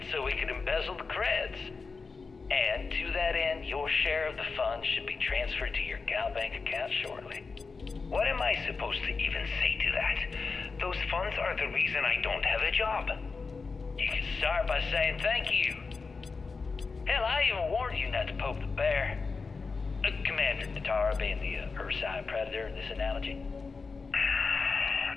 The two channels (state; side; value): quieter; right; 4.5 dB